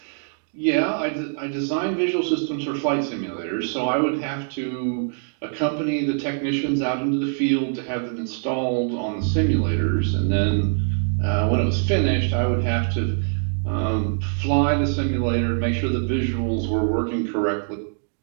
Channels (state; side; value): silent; left; digital silence